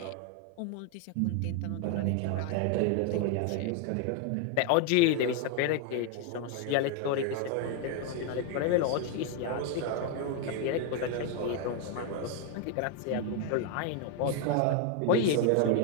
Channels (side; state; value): both; different; correlation 0.01